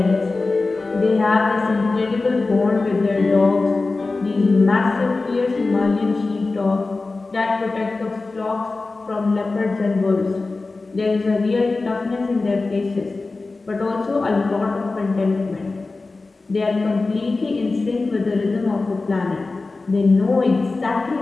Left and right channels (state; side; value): quieter; right; 3.6 dB